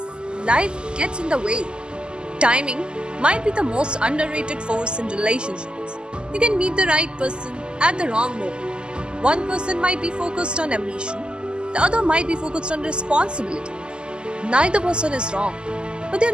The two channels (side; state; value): left; late; 0.049 ms